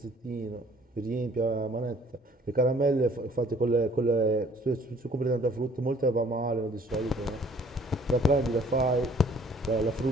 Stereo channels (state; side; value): normal; both; correlation 0.57